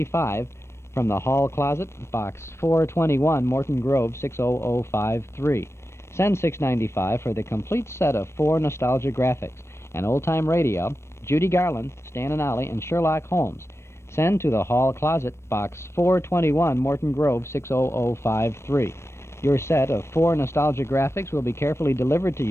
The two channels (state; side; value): late; right; 0.13 ms